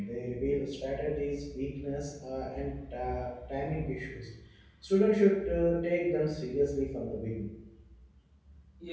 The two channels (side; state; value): both; identical; correlation 1.00